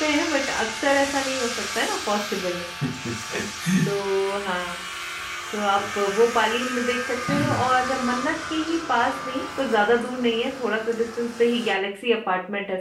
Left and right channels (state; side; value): identical; both; correlation 1.00